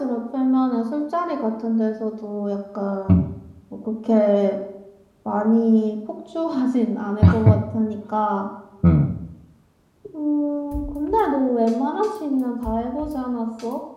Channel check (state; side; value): identical; both; correlation 1.00